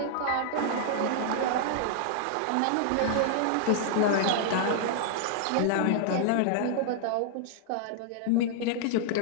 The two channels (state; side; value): different; both; correlation -0.01